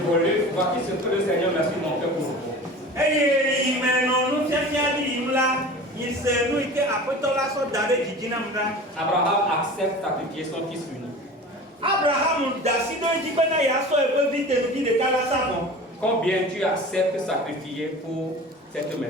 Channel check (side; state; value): both; normal; correlation 0.37